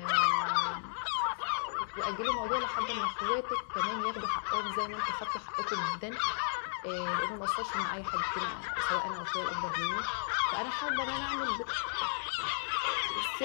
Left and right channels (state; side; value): silent; right; 55 dB below the other